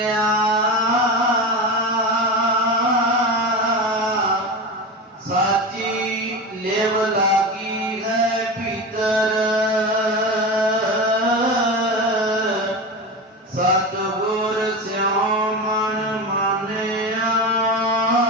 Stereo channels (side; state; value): both; normal; correlation 0.24